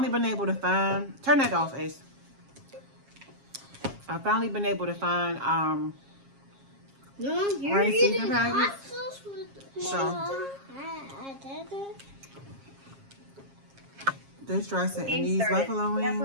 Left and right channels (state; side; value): late; left; 7.4 ms